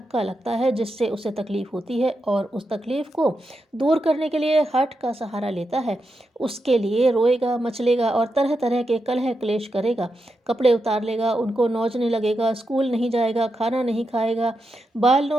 लगता है, जिससे उसे तकलीफ होती है, और उस तकलीफ को दूर करने के लिए हठ का सहारा लेता है। उसके लिए रोएगा, मचलेगा और तरह तरह के कलह क्लेश करेगा। कपड़े उतार लेगा, उनको नोचने लगेगा, स्कूल नहीं जाएगा, खाना नहीं खाएगा, बाल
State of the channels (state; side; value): normal; both; correlation 0.86